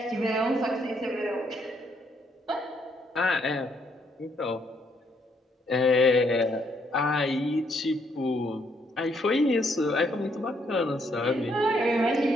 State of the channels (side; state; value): both; normal; correlation 0.71